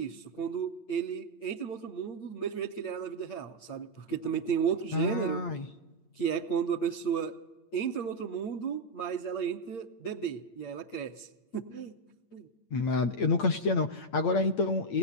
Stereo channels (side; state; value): right; late; 8.7 ms